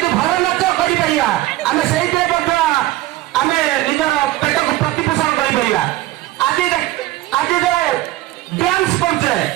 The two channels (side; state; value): left; quieter; 16.7 dB